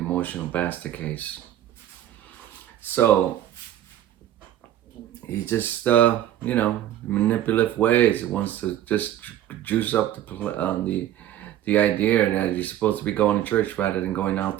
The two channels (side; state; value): left; quieter; 12.2 dB